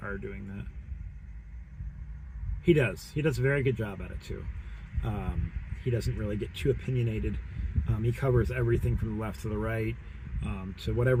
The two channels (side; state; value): both; identical; correlation 1.00